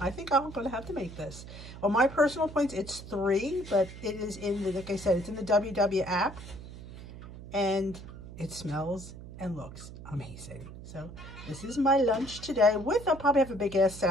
I think I'm going to have to make this. On my personal points, it's 3, but it is in the, like I said, it's in the WW app, and it smells and looks amazing. So this is my lunch today. I'll probably have a big ass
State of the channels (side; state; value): right; noise; hum, 14 dB below the sound